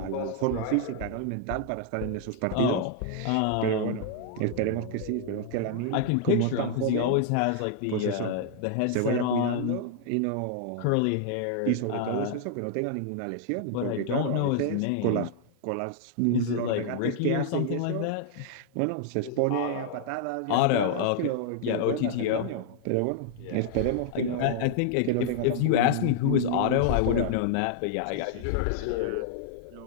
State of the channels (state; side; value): different; both; correlation -0.01